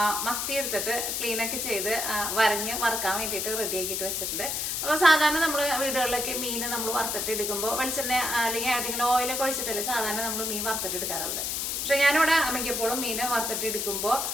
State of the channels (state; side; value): noise; left; hiss, 1 dB below the sound